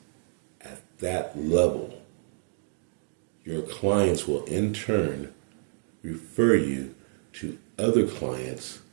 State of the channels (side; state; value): left; silent; digital silence